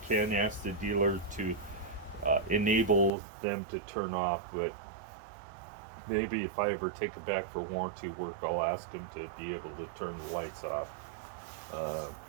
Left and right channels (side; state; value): left; drops out; at 3.1 s